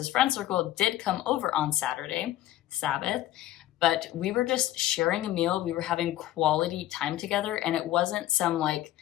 friend circle did come over on Saturday, Sabbath, but we were just sharing a meal. We were having quality time together, and it wasn't some like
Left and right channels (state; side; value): quieter; right; 14.1 dB